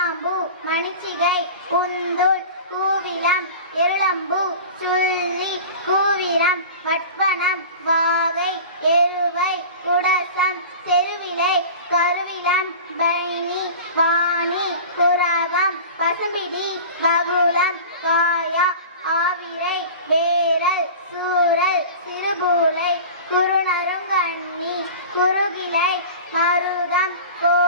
மணிச்சிகை, உந்துள், கூவிலம், இருளம்பூ, சுள்ளி, கூவிரம், வட்வனம், வாகை, எருவை, குடசம், செருவிலை, கருவிலம், பைனி, வாணி, குரவம், பசும்பிடி, வகுளம், காயா, ஆவிரை, வேரல், சூரல், சிறுபூலை, குறுநருங்கண்ணி, குறுகிலை, மருதம்,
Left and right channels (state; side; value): inverted; both; correlation -0.36